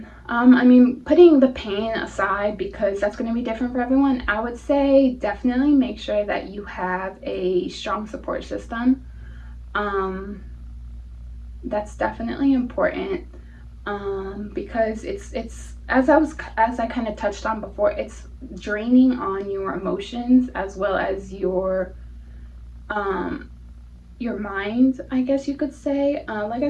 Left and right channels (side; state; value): both; identical; correlation 1.00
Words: I mean, putting the pain aside, because that's going to be different for everyone, I would say definitely make sure that you have a strong support system. That's definitely important, because it's as I kind of touched on before, it's draining on your emotions as well as your mind, I guess you could say. Like I